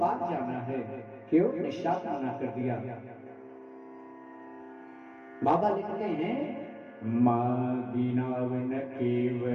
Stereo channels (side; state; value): both; identical; correlation 1.00